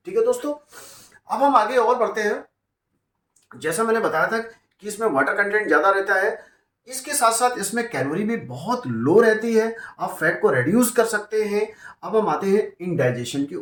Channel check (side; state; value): both; identical; correlation 1.00